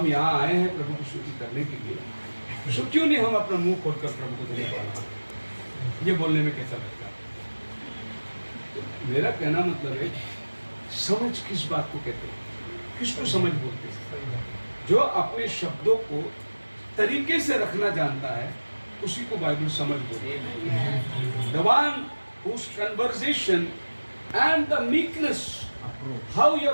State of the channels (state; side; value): inverted; both; correlation -1.00